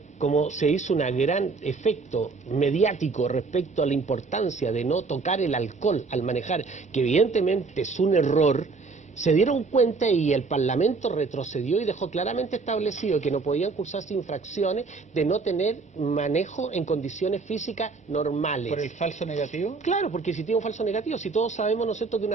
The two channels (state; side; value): quieter; left; 4.3 dB